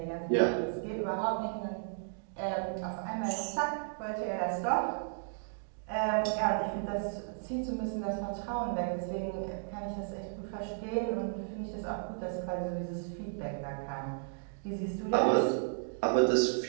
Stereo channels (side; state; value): left; silent; digital silence